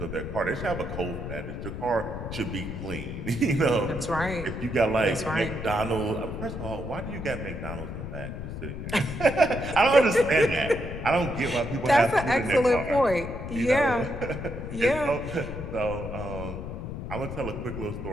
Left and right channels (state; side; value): noise; left; rumble, 7 dB below the sound